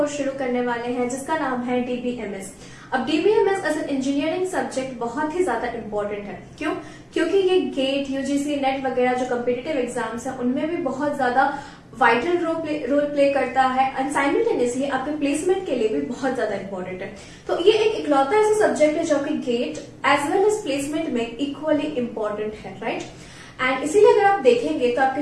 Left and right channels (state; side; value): identical; both; correlation 1.00